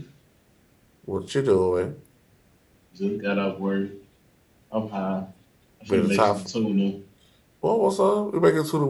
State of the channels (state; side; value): identical; both; correlation 1.00